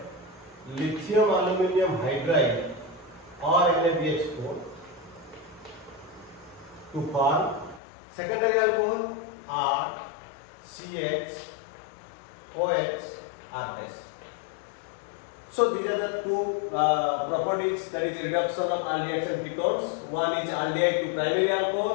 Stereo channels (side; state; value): right; drops out; at 7.8 s